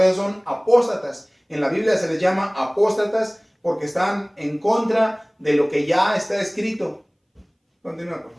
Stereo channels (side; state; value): both; identical; correlation 1.00